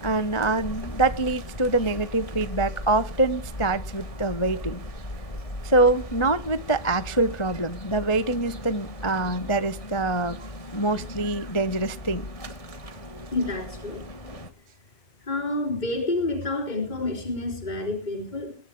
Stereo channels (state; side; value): late; right; 1.4 ms